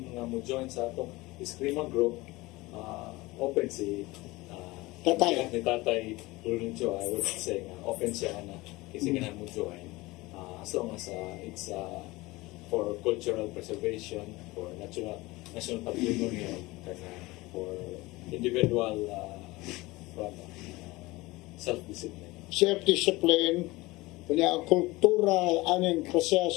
nga mo join sa atong eskrima group, open si Tatay. ni Tatay Luluncho, I would say open siya na kasi ganahan mo join as long as it's for cultural preservation, for national patrimony, for individual self-discipline. Self-discipline, kanya kultura, aning kasya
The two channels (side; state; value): right; quieter; 21.2 dB